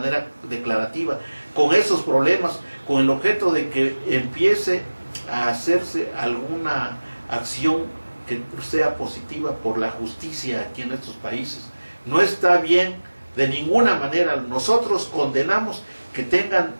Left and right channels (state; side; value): inverted; both; correlation -1.00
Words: declarativa, con esos problemas, con el objeto de que empiece a hacerse alguna acción que sea positiva por la justicia aquí en estos países. No está bien de ninguna manera. Nosotros condenamos que tengan